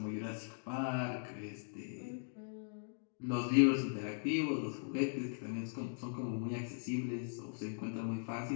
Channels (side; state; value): right; silent; digital silence